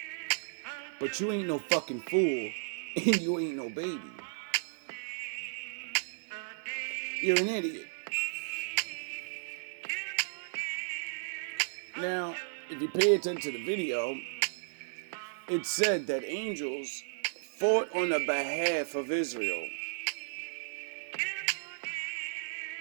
But you ain't no fucking fool, and you ain't no baby. You're an idiot. Now, if you pay attention to the video, it said that angels fought on the behalf of Israel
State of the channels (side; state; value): left; silent; digital silence